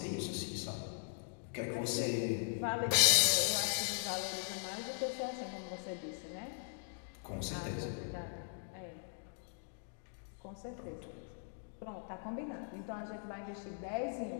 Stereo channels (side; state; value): right; silent; digital silence